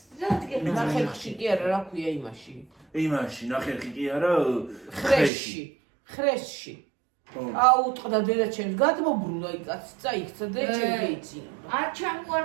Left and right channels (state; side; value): drops out; left; at 5.3 s